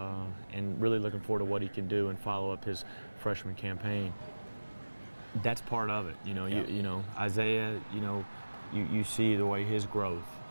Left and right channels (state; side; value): inverted; both; correlation -1.00